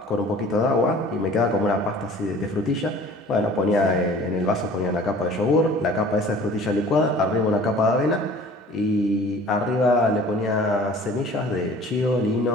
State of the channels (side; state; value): both; normal; correlation 0.47